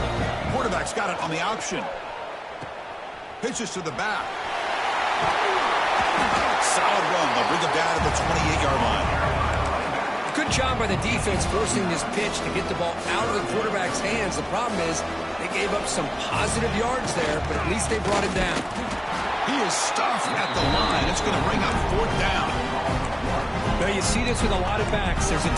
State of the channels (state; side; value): identical; both; correlation 1.00